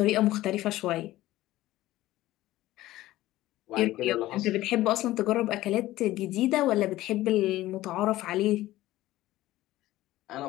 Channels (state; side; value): quieter; right; 16.1 dB